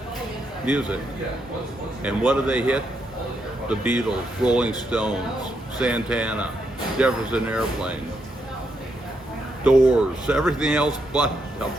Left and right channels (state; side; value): normal; both; correlation 0.79